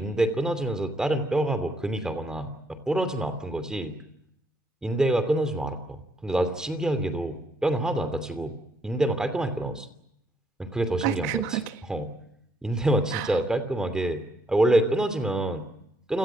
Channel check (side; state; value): both; normal; correlation 0.72